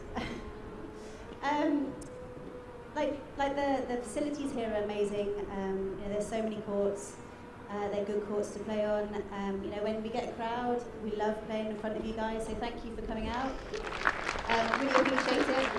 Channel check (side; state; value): both; identical; correlation 1.00